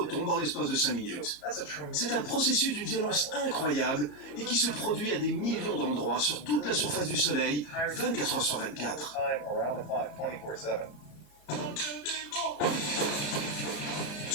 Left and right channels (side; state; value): right; late; 34 ms